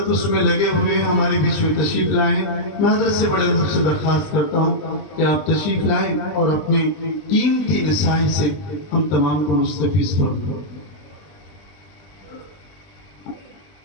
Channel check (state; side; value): late; right; 20 ms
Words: اس میں لگے ہوئے ہیں، ہمارے بیچ میں تشریف لائے ہیں۔ میں حضرت سے بڑے ادب سے درخواست کرتا ہوں کہ آپ تشریف لائیں اور اپنے قیمتی نصائح سے ہم تمام کو مستفیض فرمائیں۔